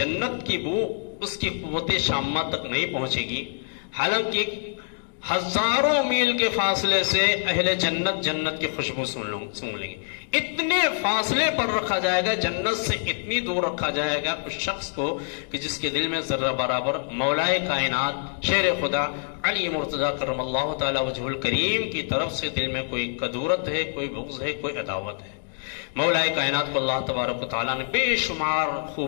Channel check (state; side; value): silent; right; 61 dB below the other